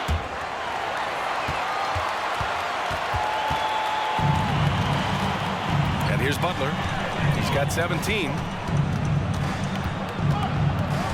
And here's Butler. He's got 17.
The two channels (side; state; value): both; identical; correlation 1.00